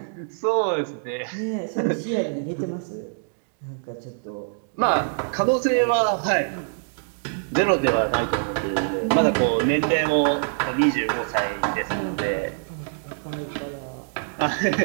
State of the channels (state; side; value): silent; left; digital silence